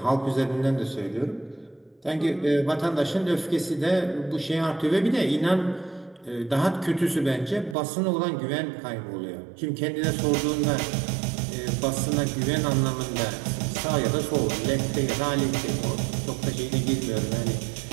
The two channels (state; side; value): drops out; left; at 7.8 s